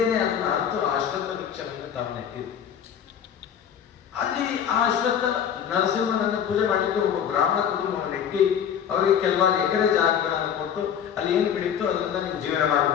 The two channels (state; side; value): quieter; right; 8.6 dB